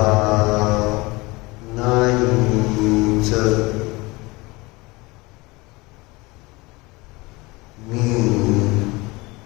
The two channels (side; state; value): right; quieter; 23.4 dB